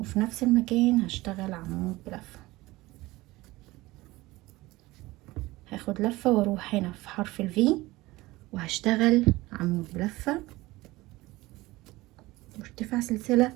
نفس المكان هشتغل عمود بلفة. هاخد لفة واروح هنا في حرف الفي وهشتغل عمود بلفة وارتفاع سلسلة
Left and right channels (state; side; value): quieter; left; 19.6 dB